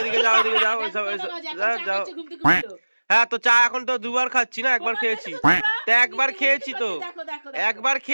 যাও এদিকে, যাও যাও। হ্যাঁ তো চা এখন তো দুবার খাচ্ছি না, একবার খেয়েছি তো, একবার খেয়েছি তো, একবার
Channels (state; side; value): inverted; both; correlation -1.00